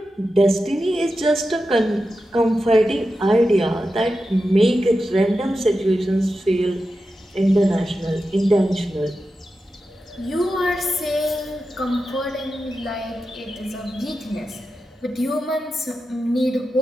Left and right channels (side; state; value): both; normal; correlation 0.91